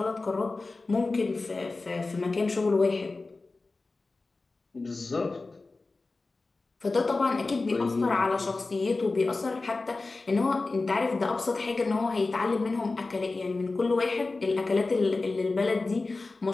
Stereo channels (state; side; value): quieter; right; 3.5 dB